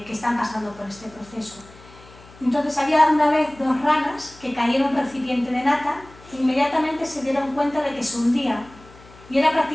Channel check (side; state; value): left; noise; hum, 22 dB below the sound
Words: están pasando por este proceso. Entonces había una vez dos ranas que cayeron en un recipiente de nata e inmediatamente se dieron cuenta de que se hundía y era